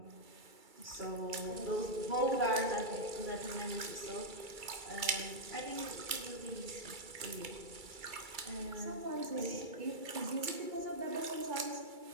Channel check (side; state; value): left; late; 2.3 ms